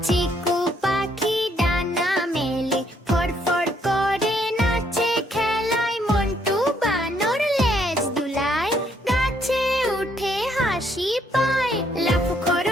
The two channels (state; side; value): normal; both; correlation 0.70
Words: চিকু পাখি ডানা মেলে ফরফর করে নাচে খেলায়। মন্টু বানর লেজ দুলায় গাছে উঠে হাসি পায়। লাফু